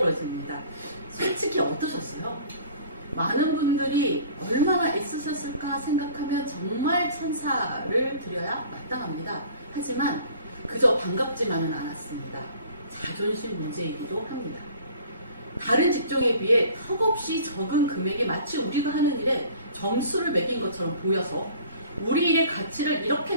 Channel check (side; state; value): both; inverted; correlation -0.48